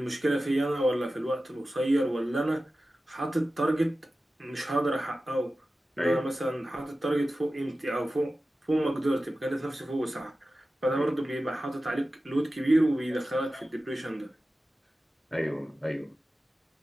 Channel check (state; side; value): normal; both; correlation 0.94